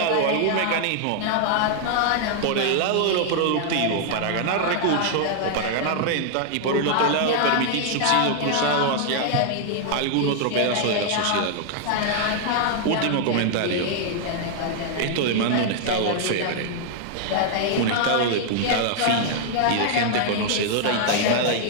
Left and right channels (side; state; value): both; different; correlation 0.00